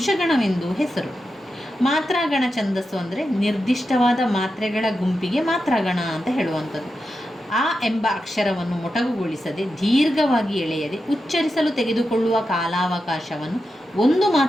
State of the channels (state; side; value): normal; both; correlation 0.89